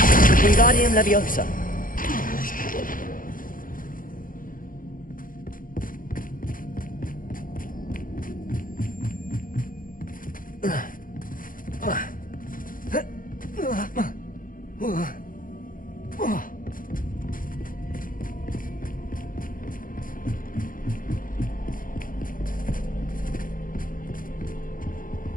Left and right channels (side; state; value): right; late; 0.40 ms